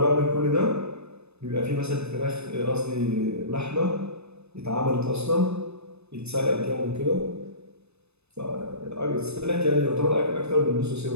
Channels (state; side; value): late; left; 0.80 ms